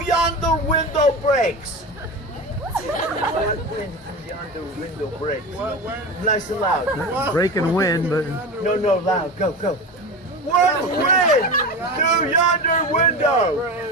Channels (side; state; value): both; normal; correlation 0.26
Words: yonder window breaks? What wind through yonder window breaks? What wind? Nice and loud. Breaking wind, but No, loud. Go. What wind through yonder window?